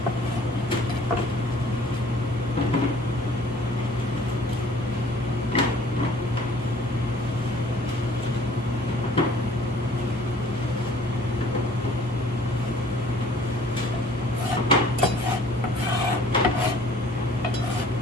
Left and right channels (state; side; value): normal; both; correlation 0.54